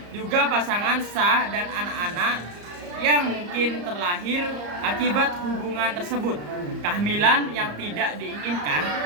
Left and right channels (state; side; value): late; left; 34 ms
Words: juga pasangan sah dan anak-anak yang mungkin terlahir akibat hubungan tersebut. Kehamilan yang tidak diinginkan